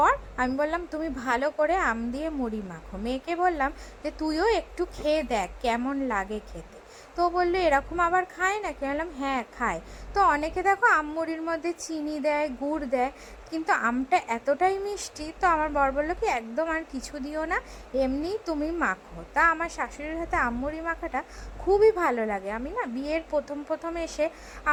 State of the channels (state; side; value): identical; both; correlation 1.00